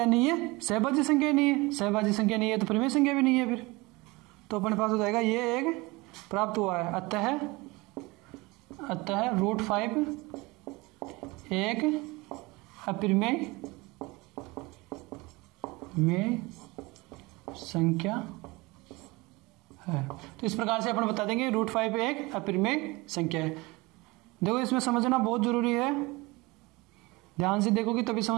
नहीं है, सहभाज्य संख्या नहीं है। सहभाज्य संख्या नहीं है तो परिमेय संख्या भी नहीं है फिर, तो अपने पास हो जाएगा ये एक प्राप्त हुआ है। अतः √5 एक अपरिमेय में संख्या है। तो इस प्रकार से अपन बता देंगे √5 एक अपरिमेय संख्या है। देखो इसमें समझना बहुत जरूरी है, ध्यान से देखोगे तभी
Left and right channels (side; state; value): left; quieter; 23.6 dB